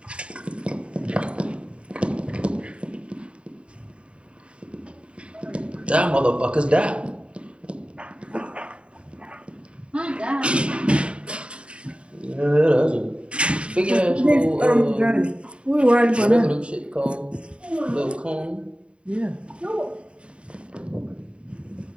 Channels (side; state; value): left; late; 0.057 ms